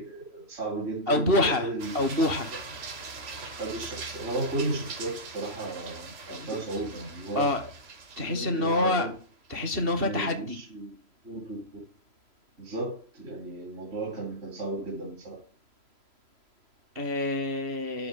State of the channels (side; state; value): left; late; 3.0 ms